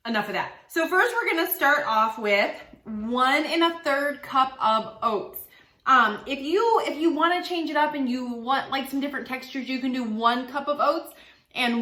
enough of that. So first we're gonna start off with 1 1/3 cup of oats. If you wanna change it up and you want like some different textures, you can do 1 cup of oats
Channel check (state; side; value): identical; both; correlation 1.00